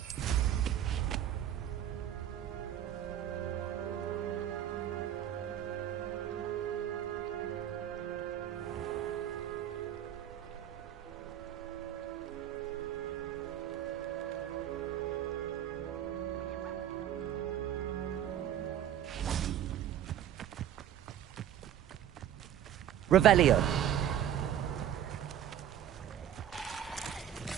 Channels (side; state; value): left; quieter; 10.7 dB